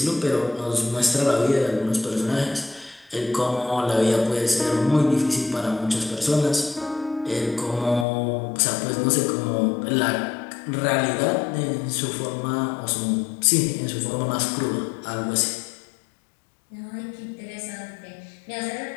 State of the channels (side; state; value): right; drops out; at 8.1 s